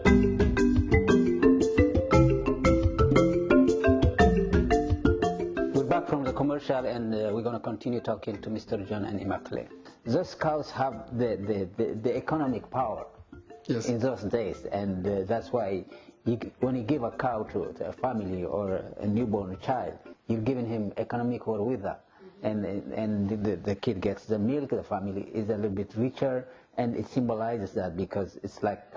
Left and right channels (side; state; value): both; identical; correlation 1.00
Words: And we're going to continue talking to Mr. John and Immaculate. Those cows have the economic power in those days, and that's why when you give a cow to a family or a newborn child, you're giving him economic wherewithal, and the kid gets the milk. The family is a little bit richer, and it symbolizes that because it's like